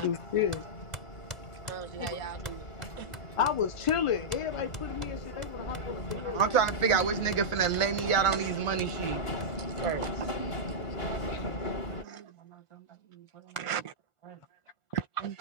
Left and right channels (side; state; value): right; late; 1.4 ms